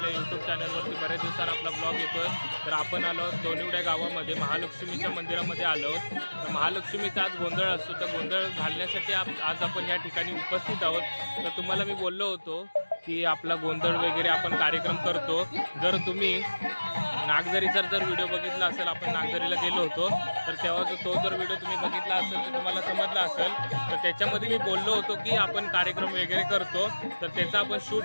यूट्यूब चॅनलवरती। बऱ्याच दिवसांनी आपला ब्लॉग येतोय। तर आपण आलो दोनिवड्या गावामध्ये महालक्ष्मीच्या मंदिरामध्ये आलो। तर महालक्ष्मीचा आज गोंधळ असतो, तर गोंधळ घालण्यासाठी आज आपण या ठिकाणी उपस्थित आहोत। तर तुम्हाला मी बोललो होतो की आपला गोंधळ वगैरे आपण कार्यक्रम करतो। जर तुम्ही नागझरीचा जर व्हिडिओ बघितला असेल, आपण नागझरीला गेलो होतो, तर तेव्हा तो जर व्हिडिओ तुम्ही बघितला असेल तर तुम्हाला समजला असेल। तर त्याच्यामध्ये मी बोललो होतो की आपण कार्यक्रम वगैरे करतो, तर त्याचा आपण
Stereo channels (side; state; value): both; inverted; correlation -1.00